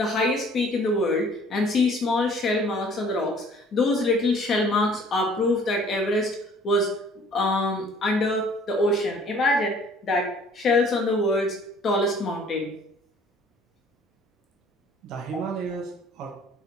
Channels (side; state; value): both; normal; correlation 0.54